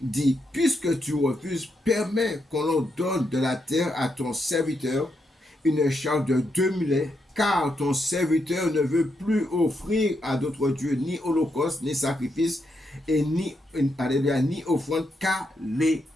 dit, puisque tu refuses, permets qu'on leur donne de la terre à ton serviteur une charge de 2 mulets, car ton serviteur ne veut plus offrir à d'autres dieux ni holocauste, ni sacrifice, et ni offrande qu'à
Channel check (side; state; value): both; normal; correlation 0.81